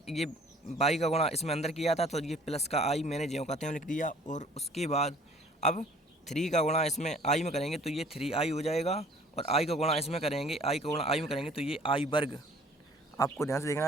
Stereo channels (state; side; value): normal; both; correlation 0.54